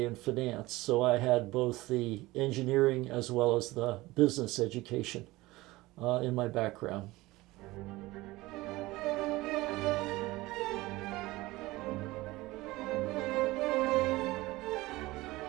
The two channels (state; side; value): quieter; left; 19.7 dB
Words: in finance. So I had both the engineering as well as the business education in my background.